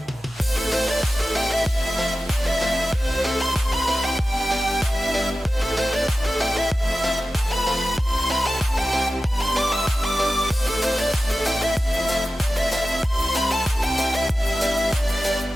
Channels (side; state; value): both; normal; correlation 0.94